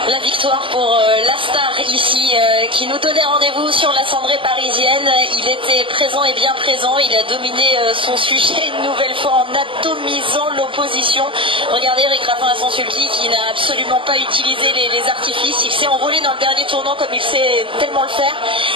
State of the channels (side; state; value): left; late; 0.25 ms